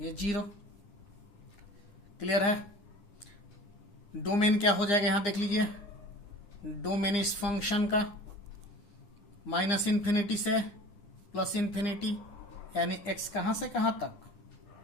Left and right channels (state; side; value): late; right; 9.8 ms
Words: 0 क्लियर है। डोमेन क्या हो जाएगा यहां देख लीजिए, डोमेन इस फंक्शन का माइनस इन्फिनिटी से प्लस इन्फिनिटी, यानी x कहां से कहां तक,